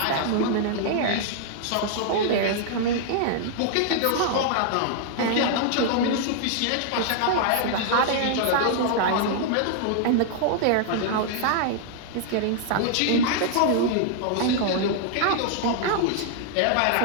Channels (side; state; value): both; different; correlation -0.01